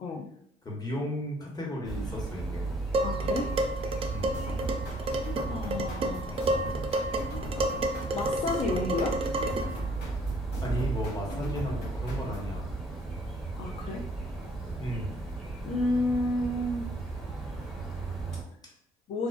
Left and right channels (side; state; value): both; normal; correlation 0.61